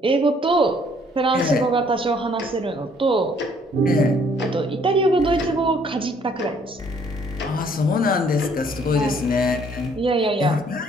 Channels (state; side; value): normal; both; correlation 0.62